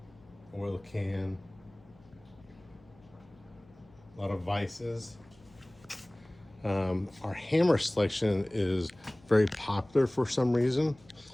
oil can. A lot of vices. Our hammer selection is very popular for some reason.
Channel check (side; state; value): left; noise; hum, 27 dB below the sound